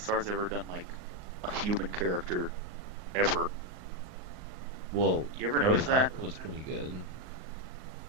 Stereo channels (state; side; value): late; left; 38 ms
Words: ever done, like, a human character ever. Well, You ever notice that? Up was pretty good.